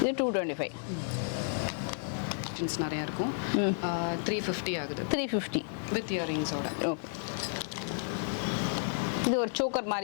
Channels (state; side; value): silent; right; digital silence